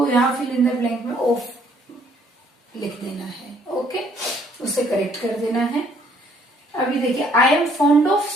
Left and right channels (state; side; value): normal; both; correlation 0.64